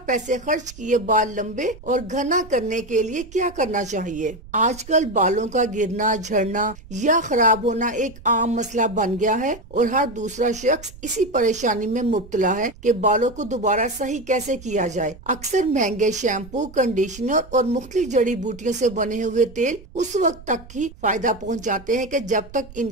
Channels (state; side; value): noise; right; rumble, 19 dB below the sound